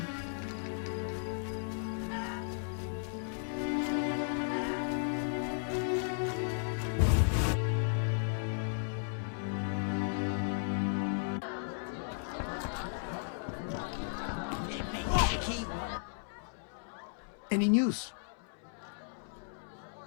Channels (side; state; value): right; silent; 54 dB below the other